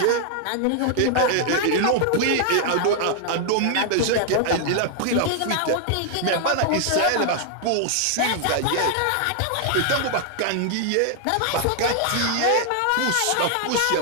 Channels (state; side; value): different; both; correlation 0.00